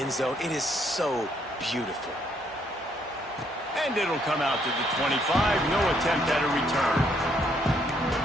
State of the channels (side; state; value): both; normal; correlation 0.70